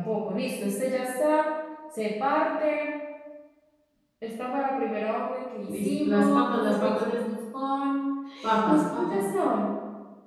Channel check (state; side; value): identical; both; correlation 1.00